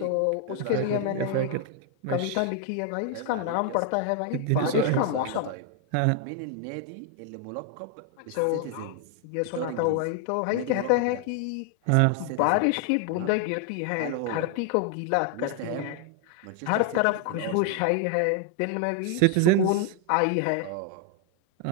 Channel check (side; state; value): both; different; correlation 0.00